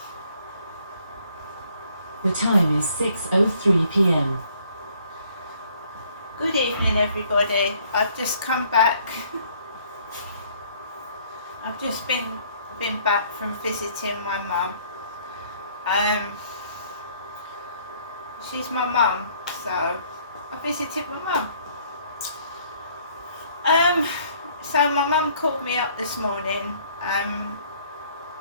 The time is 6:03 p.m. Good evening everybody, I've just come back. I've just been back from visiting my mum. She's my mum, so I visited my mum. So my mum called me up this morning.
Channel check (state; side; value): inverted; both; correlation -0.62